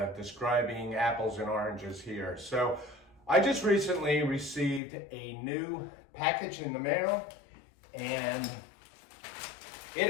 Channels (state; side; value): drops out; right; at 4.8 s